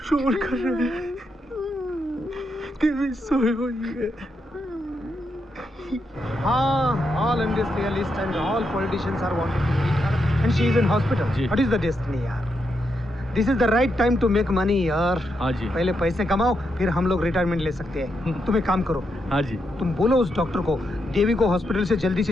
शोर कर रहे हैं। तभी सोई हुई है। all industrialists and all politicians are wanting to meet her, and she is in hospital. What is the destiny, यार? This is the right time to make money, यार। हाँ जी। पहले पैसे कमाओ, फिर हम लोग रिटायरमेंट ले सकते हैं। तुम एक काम करो। हाँ जी। तुम बोलो उस डॉक्टर को देवी को हॉस्पिटल से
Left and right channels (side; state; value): both; normal; correlation 0.82